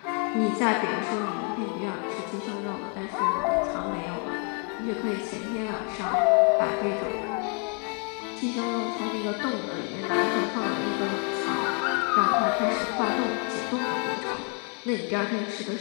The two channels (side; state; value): right; quieter; 39.4 dB